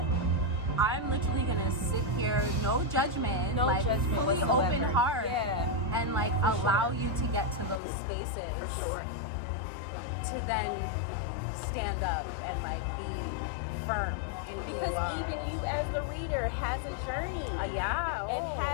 I'm literally gonna sit here, no judgment, like fully whatsoever. open heart, and like allow you to get to those spaces For sure. to then stand up and like be firm. And Because even you as the reader has a journey. And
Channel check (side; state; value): right; drops out; at 7.8 s